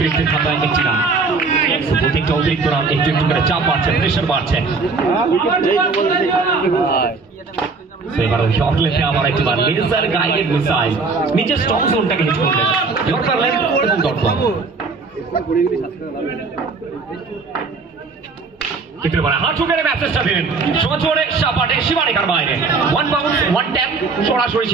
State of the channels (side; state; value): left; quieter; 4.3 dB